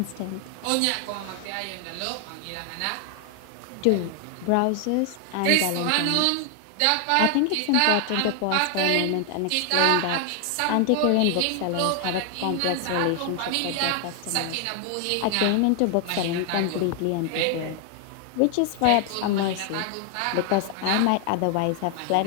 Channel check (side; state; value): both; different; correlation 0.00